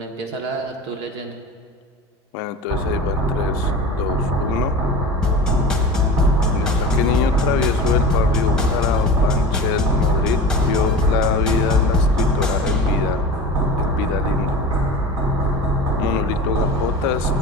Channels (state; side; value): normal; both; correlation 0.33